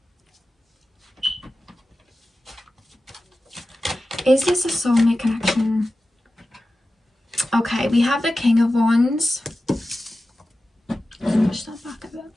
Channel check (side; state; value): both; normal; correlation 0.94